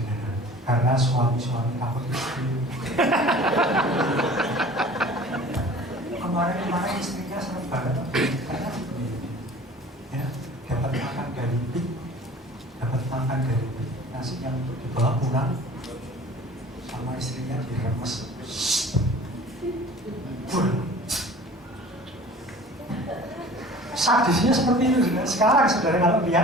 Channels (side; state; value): both; normal; correlation 0.44